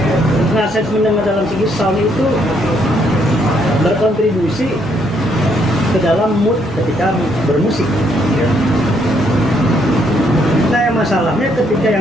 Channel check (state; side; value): normal; both; correlation 0.71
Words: Nah, sense mendengar dalam segi sound itu berkontribusi ke dalam mood ketika bermusik. Nah, yang masalahnya ketika